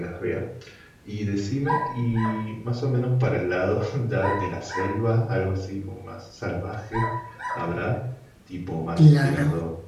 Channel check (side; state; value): both; identical; correlation 1.00